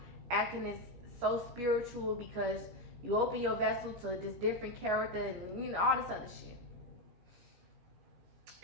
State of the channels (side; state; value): left; late; 17 ms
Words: acting is so spiritual because you open your vessel to this different character and all this other shit.